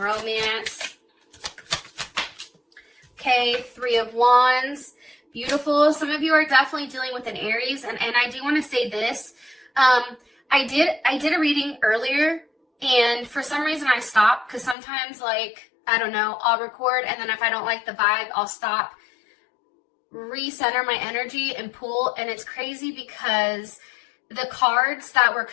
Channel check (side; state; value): right; drops out; at 14.8 s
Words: Okay, Three of Wands. Beautiful. Some of you are definitely dealing with an Aries, and I do want to say this. I did a reading earlier, and for some reason I stopped because sometimes, like, I don't know, I'll record, and then if I don't like the vibe, I'll stop, recenter my energy, and pull. And it's crazy because the cards that were